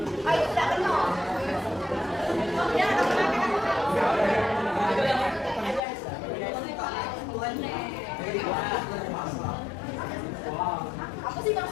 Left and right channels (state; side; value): drops out; right; at 5.8 s